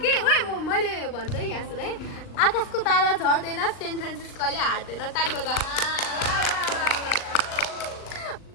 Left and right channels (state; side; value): late; right; 39 ms